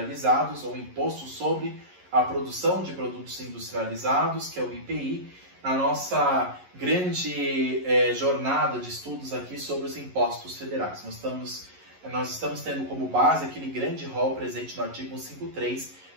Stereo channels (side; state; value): left; late; 11 ms